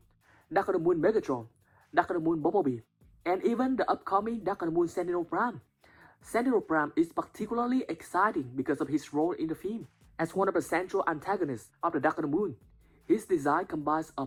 Dark of the Moon Megatron, Dark of the Moon Bumblebee, and even the upcoming Dark of the Moon Sentinel Prime. Sentinel Prime is particularly exciting because of his role in the film. As one of the central antagonists of the Dark of the Moon, his design combines a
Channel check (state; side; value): identical; both; correlation 1.00